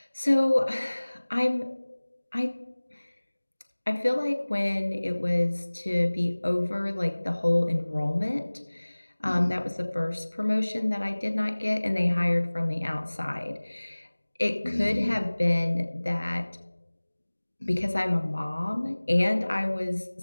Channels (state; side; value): inverted; both; correlation -1.00